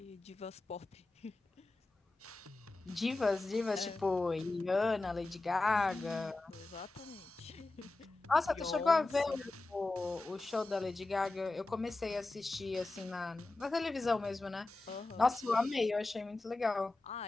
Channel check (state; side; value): quieter; right; 3.1 dB